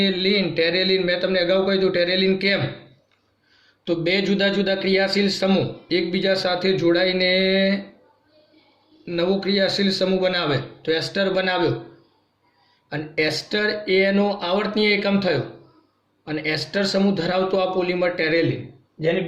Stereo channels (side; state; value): both; identical; correlation 1.00